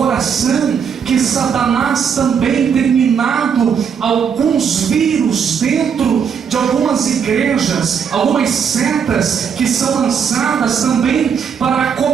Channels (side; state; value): left; quieter; 7.1 dB